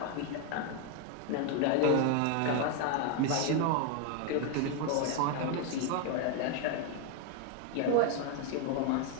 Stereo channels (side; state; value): both; different; correlation 0.01